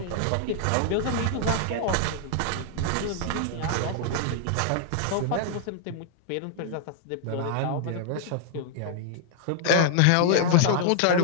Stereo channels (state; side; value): different; both; correlation 0.00